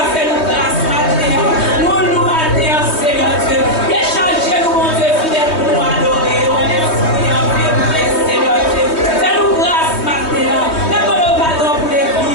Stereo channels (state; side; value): late; right; 3.2 ms